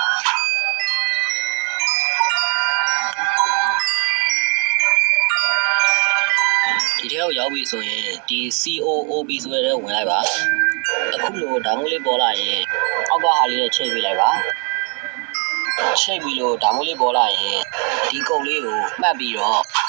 ဒီထဲကိုရောက်ပြီဆိုရင်ဒီ COOB ဆိုတဲ့ထဲဝင်လိုက်ပါအခုလိုဓာတ်မိုးလေးပေါ်လာရင်အောက်ကဟာလေးနဲ့ချိန်ပေးလိုက်ပါချိန်ပြီးလို့ဓာတ်မိုးလေးပေါ်လာရင်ဒီကုတ်လေးကိုမှတ်ပြီးတော့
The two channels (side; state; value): left; quieter; 37.0 dB